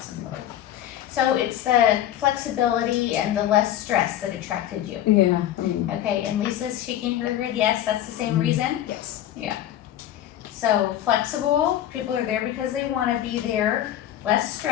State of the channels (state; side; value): quieter; right; 12.0 dB